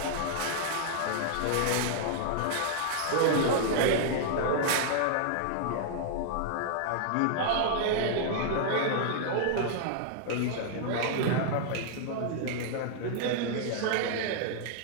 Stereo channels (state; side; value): different; both; correlation -0.01